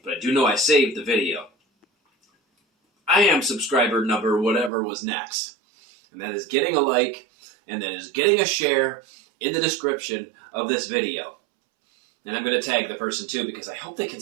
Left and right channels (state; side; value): drops out; left; at 4.7 s